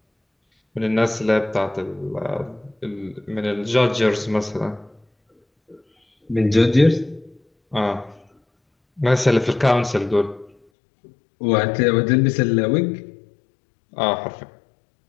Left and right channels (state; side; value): drops out; right; at 10.6 s